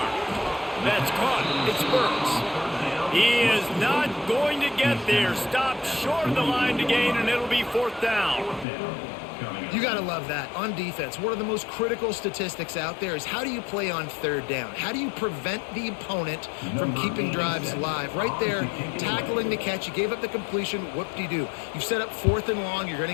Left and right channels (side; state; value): right; drops out; at 8.7 s